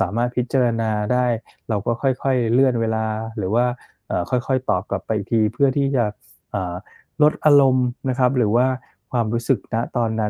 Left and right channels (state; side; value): identical; both; correlation 1.00